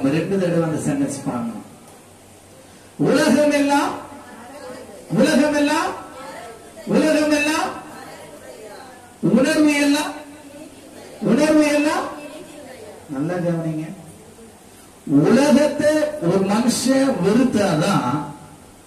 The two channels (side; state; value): both; identical; correlation 1.00